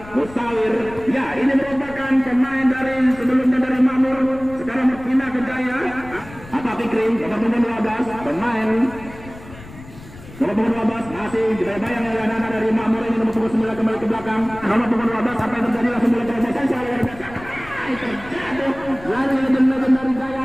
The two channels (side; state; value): left; noise; rumble, 17 dB below the sound